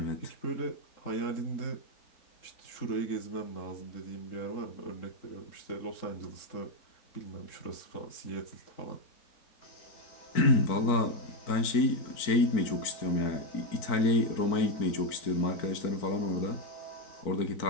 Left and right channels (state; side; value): late; right; 4.4 ms